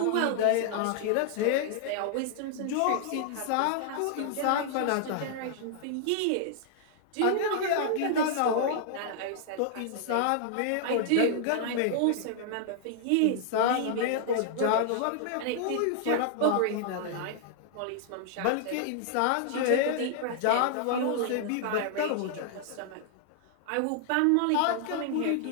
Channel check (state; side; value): different; both; correlation 0.00